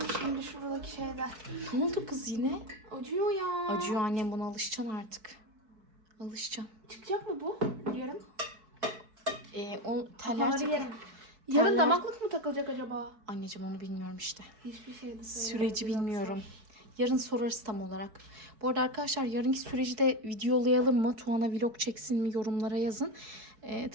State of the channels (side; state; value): left; late; 4.6 ms